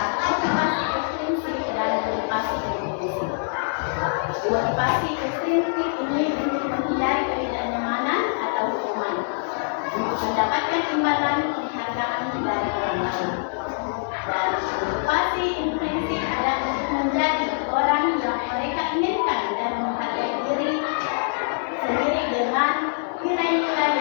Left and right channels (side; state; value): right; silent; digital silence